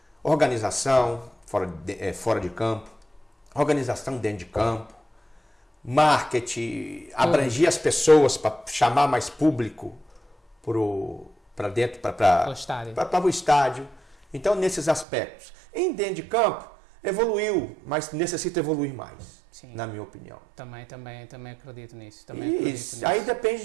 Organização, fora de campo, organização dentro de campo, marketing, abranger as pessoas para chamar mais público para dentro, para o estádio. Então, nesses aspectos. Em dentro de campo, evoluiu, mas necessita evoluir mais. Sim. Na minha opinião. Também acredito nisso. Aí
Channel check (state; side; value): drops out; left; at 15.1 s